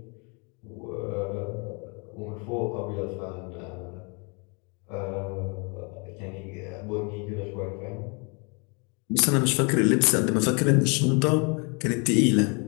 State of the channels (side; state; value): right; quieter; 33.2 dB